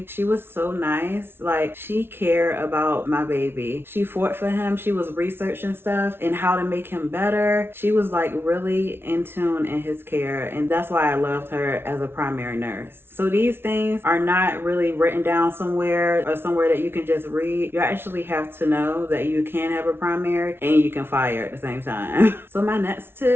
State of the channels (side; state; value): left; late; 0.11 ms